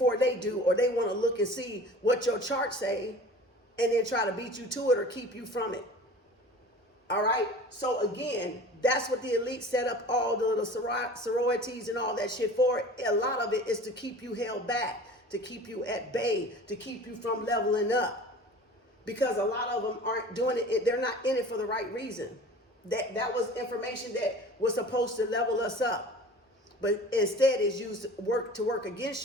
they do, or they want to look and see what your chart say and then try to beat you to it or keep you from it. All right. So again, that's what the elite set up all the little sororities and all that shit for. A lot of it is to keep you held back, to keep you at bay, to keep you from leveling up, because a lot of them aren't doing it. They're not in it for the right reason. That was information that was supposed to level us up, but instead is used to work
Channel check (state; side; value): normal; both; correlation 0.42